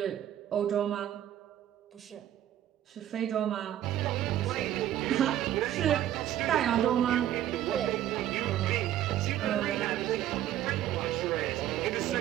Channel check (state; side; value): quieter; left; 12.1 dB